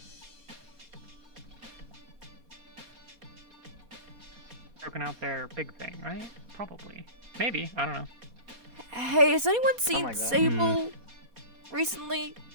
Broken out their big thing, right? Probably. Maybe. I don't know. Hey, has anyone seen Sable recently?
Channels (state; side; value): late; left; 4.2 ms